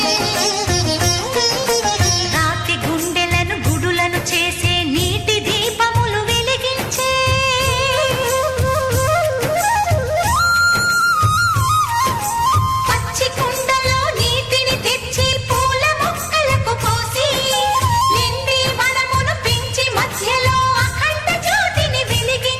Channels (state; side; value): identical; both; correlation 1.00